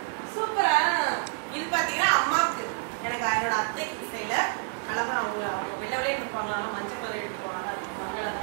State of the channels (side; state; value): left; silent; 56 dB below the other